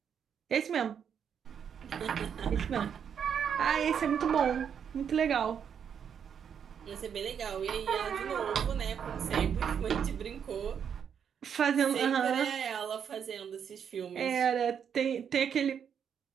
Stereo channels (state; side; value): quieter; left; 7.8 dB